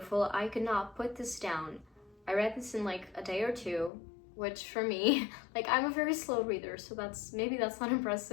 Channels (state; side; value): drops out; right; at 3.9 s